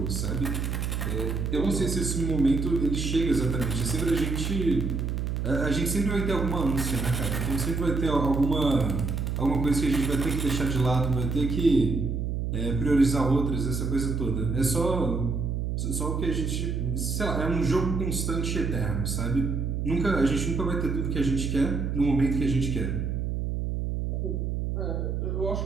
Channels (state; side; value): noise; right; hum, 1 dB below the sound